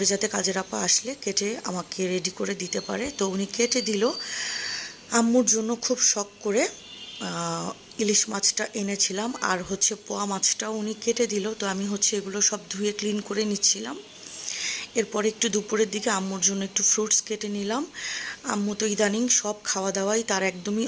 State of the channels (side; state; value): both; identical; correlation 1.00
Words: যাতে কাজের আপা আসলে কেটে আমাকে রেডি করে দিতে পারে। তো উনি কেটে দিল। আম্মুর জন্য খুব শখ করে ইলিশ মাছটা এনেছিলাম, আর পোয়া মাছটাও উনি কেটে দিল। তো আমি এগুলো সব ধুয়ে ক্লিন করে নিচ্ছিলাম। এরপরে একটু দুপুরের দিকে আম্মুর জন্য একটু ফ্রুটস কেটে নিলাম। আম্মু তো ইদানিং সব খাওয়া দাওয়াই তার একদমই